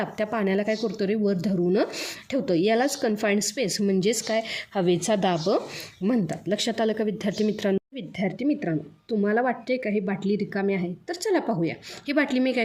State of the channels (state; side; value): identical; both; correlation 1.00